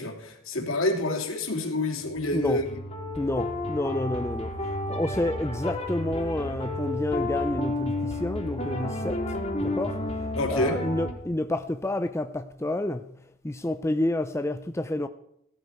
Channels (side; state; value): both; normal; correlation 0.59